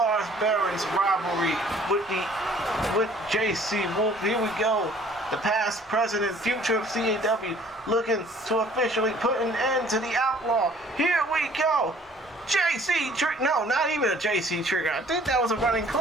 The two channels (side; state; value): both; normal; correlation 0.55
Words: Behrens' rivalry with JC Wolf? Here we go. The past, present, and future of CAW looking to officially put an end to the outlaw. Here we go. JC Trigger. No, not even a JC Trigger. I think that was a running